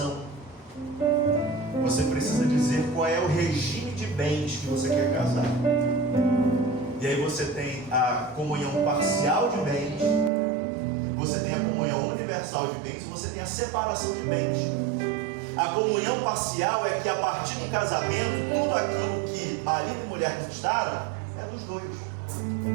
Você precisa dizer qual é o regime de bens que você quer casar. E aí você tem a comunhão parcial de bens, você tem a comunhão universal de bens, e você tem a separação de bens. A comunhão parcial é que a partir do casamento, tudo aquilo que marido e mulher conquistaram é dos dois.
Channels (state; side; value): drops out; left; at 10.3 s